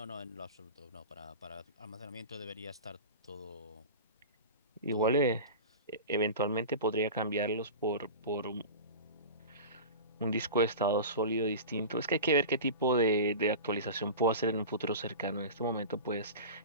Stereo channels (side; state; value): both; inverted; correlation -0.31